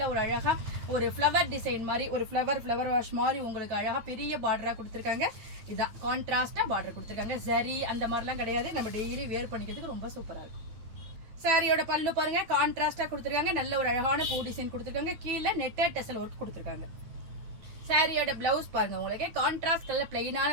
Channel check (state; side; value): late; left; 9.2 ms